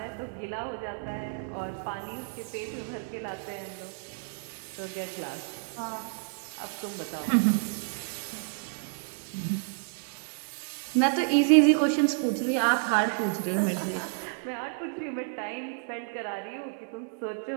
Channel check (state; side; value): silent; left; digital silence